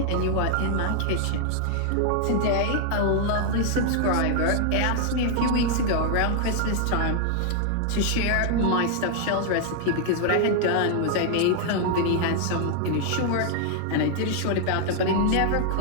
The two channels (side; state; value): both; different; correlation 0.00